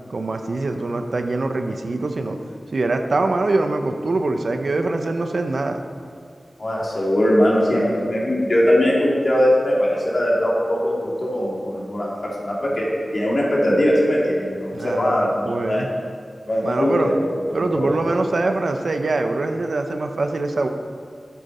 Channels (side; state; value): both; normal; correlation 0.95